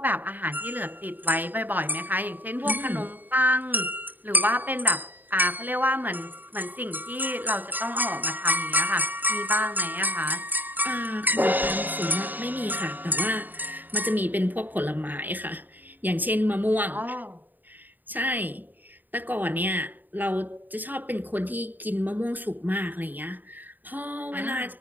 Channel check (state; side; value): late; left; 0.088 ms